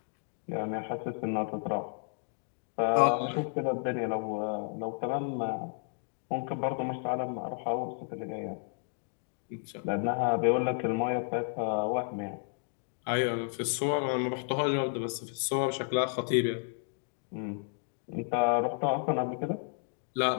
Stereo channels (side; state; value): right; silent; 56 dB below the other